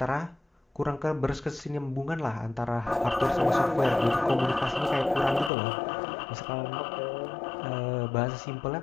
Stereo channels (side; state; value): right; drops out; at 5.5 s